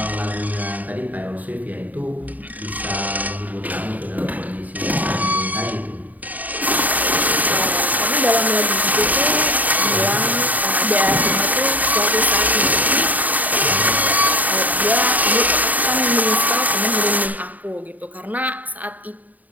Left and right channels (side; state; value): left; late; 0.078 ms